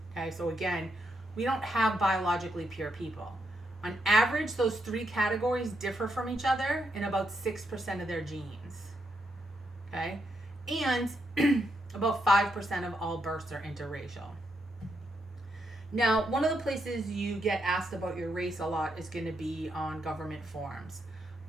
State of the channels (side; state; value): both; normal; correlation 0.81